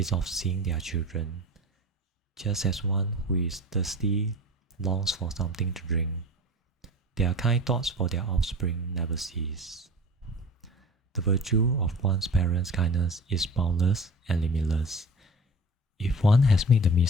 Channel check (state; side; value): normal; both; correlation 0.38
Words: of seeing their children, just as one who is thirsty longs for something to drink. Their kind thoughts for their offspring never cease. The virtue of one's parents' kindness is boundless and limitless. If one has made the